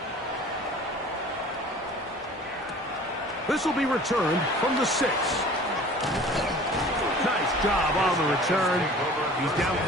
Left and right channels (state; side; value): normal; both; correlation 0.45